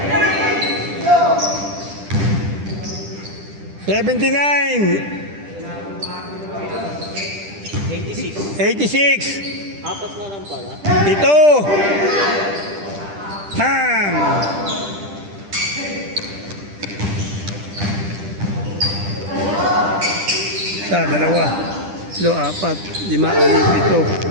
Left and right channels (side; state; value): left; late; 10 ms